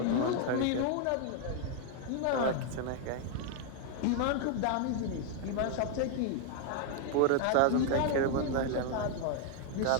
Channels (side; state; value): both; different; correlation 0.00